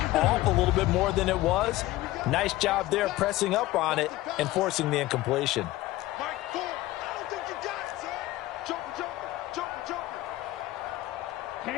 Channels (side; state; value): right; quieter; 17.0 dB